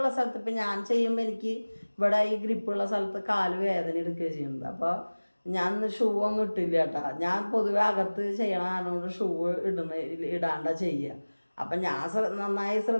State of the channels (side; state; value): both; inverted; correlation -1.00